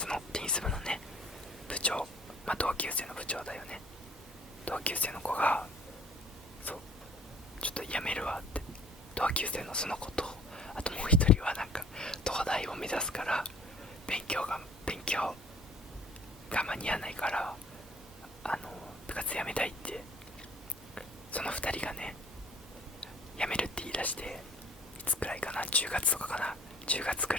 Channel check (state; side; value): normal; both; correlation 0.55